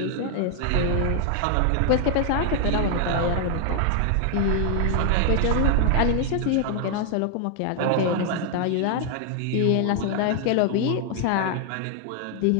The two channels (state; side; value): different; both; correlation 0.00